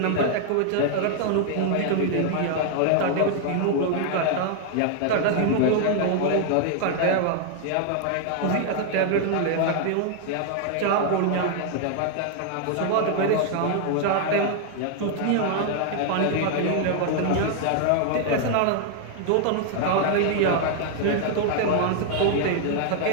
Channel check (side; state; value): both; different; correlation 0.00